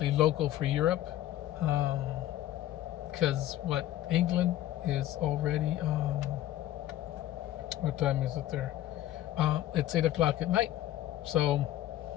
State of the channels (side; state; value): right; quieter; 13.4 dB